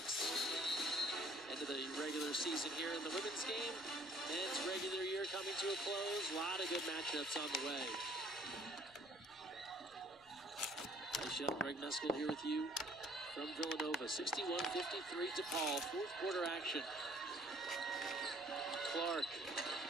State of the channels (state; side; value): noise; left; rumble, 28 dB below the sound